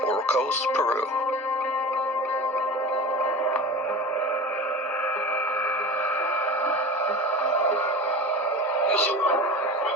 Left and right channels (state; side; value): normal; both; correlation 0.32